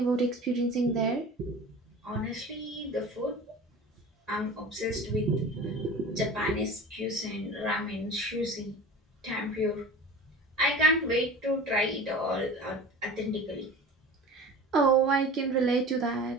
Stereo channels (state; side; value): normal; both; correlation 0.37